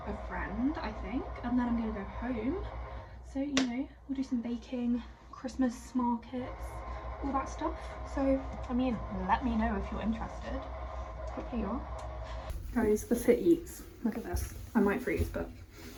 a friend, I think, and then I'm gonna go home. So, you know, we'll do some baking, Christmas markets, all that stuff. So, I mean, let me know if you're interested. Hopefully you are. Guys, the Fit Eats. Look at this. I might freeze, but...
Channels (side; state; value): both; identical; correlation 1.00